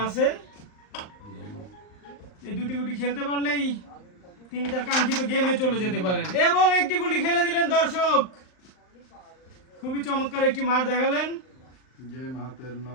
আছে, এই দুটি গুলি খেলতে পারলেই তিনি তার কাঙ্ক্ষিত গেমে চলে যেতে পারেন। এবং একটি গুলি খেলে দিলেন দর্শক, খুবই চমৎকার একটি মার দেখালেন।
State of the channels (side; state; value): right; late; 39 ms